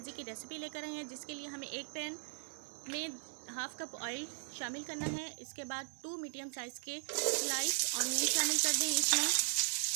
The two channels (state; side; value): silent; left; 52 dB below the other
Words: की रेसिपी लेकर आए हैं, जिसके लिए हमें एक पैन में हाफ कप ऑयल शामिल करना है। इसके बाद 2 मीडियम साइज़ के स्लाइस ऑनियन शामिल कर दें। इसमें